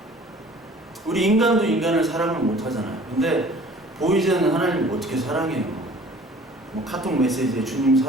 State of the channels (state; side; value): normal; both; correlation 0.49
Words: 우리 인간도 인간을 사랑을 못 하잖아요. 근데 보이지 않는 하나님을 어떻게 사랑해요? 뭐 카톡 메시지에 주님